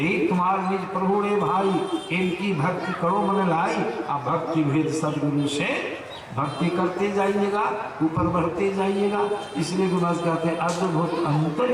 तुम्हारे निज प्रभु रे भाई, इनकी भक्ति करो मन लाई। अब भक्ति भेद सदगुरु से भक्ति करते जाइएगा, ऊपर बढ़ते जाइएगा। इसलिए गुरु महाराज कहते हैं, अद्भुत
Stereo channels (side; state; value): both; identical; correlation 1.00